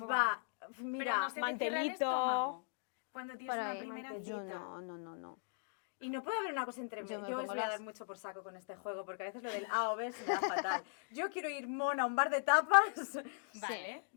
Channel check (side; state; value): right; silent; digital silence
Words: poco. Va, Pero mira, no se te cierra el mantelito. estómago cuando tienes Por una ahí, primera mantelito. cita. No. y no puede haber una cosa entre Yo medio. me Yo os pongo voy a dar las- mucho por saco con este juego, porque a veces lo del A o B se me da fatal. Yo quiero ir mona a un bar de tapas. Vale.